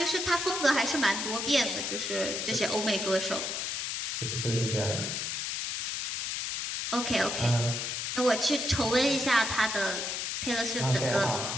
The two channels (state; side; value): noise; left; hiss, 2 dB below the sound